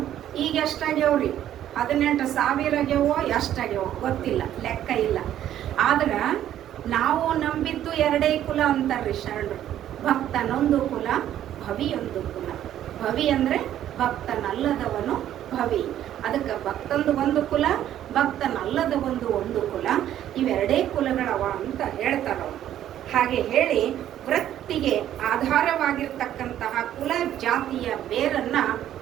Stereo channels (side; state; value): left; quieter; 11.5 dB